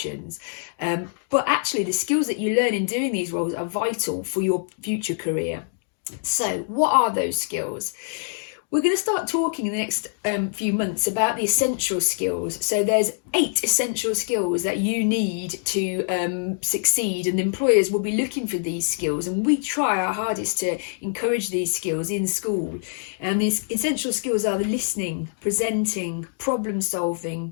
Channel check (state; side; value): silent; right; digital silence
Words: But actually the skills that you learn in doing these roles are vital for your future career. So what are those skills? We're going to start talking in the next few months about the essential skills. So there's 8 essential skills that you need to succeed, and employers will be looking for these skills, and we try our hardest to encourage these skills in school. And these essential skills are the listening, presenting, problem